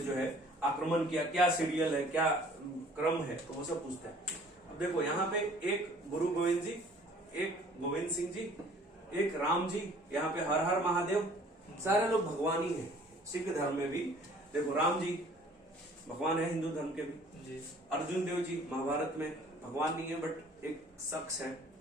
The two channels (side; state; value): both; normal; correlation 0.53